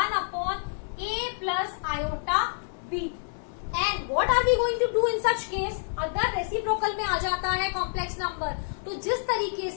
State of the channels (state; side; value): silent; right; digital silence